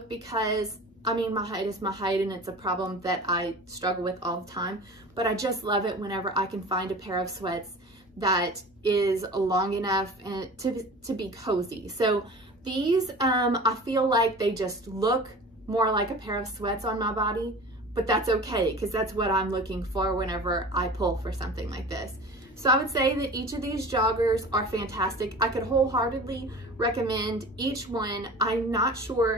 because, I mean, my height is my height and it's a problem that I struggle with all the time, but I just love it whenever I can find a pair of sweats that is long enough and to be cozy. So these, I feel like they just look more like a pair of sweats on my body, but that's okay because that's what I'm looking for whenever I pull for something like this. So I would say that each of these joggers are fantastic. I could wholeheartedly recommend each one. I'm not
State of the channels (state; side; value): normal; both; correlation 0.38